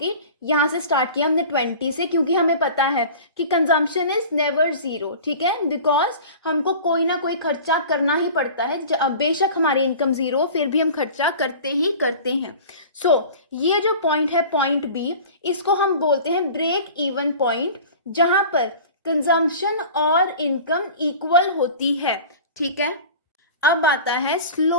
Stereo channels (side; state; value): both; inverted; correlation -0.39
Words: यहाँ से स्टार्ट किया हमने 20 से, क्योंकि हमें पता है कि कंजम्पशन इज नेवर जीरो। ठीक है, बिकॉज हमको कोई ना कोई खर्चा करना ही पड़ता है। बेशक हमारी इनकम जीरो फिर भी हम खर्चा करते ही करते हैं। सो ये जो पॉइंट है पॉइंट B, इसको हम बोलते हैं ब्रेक इवन पॉइंट, जहां पर कंजम्पशन और इनकम इक्वल होती है। ठीक है, अब आता है